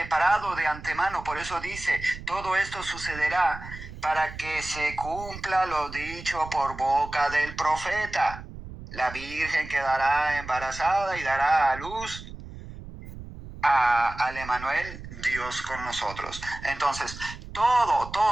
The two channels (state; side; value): noise; right; rumble, 13 dB below the sound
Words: de antemano. Por eso dice, todo esto sucederá para que se cumpla lo dicho por boca del profeta. La Virgen quedará embarazada y dará a luz al Emmanuel, Dios con nosotros. Entonces, todo,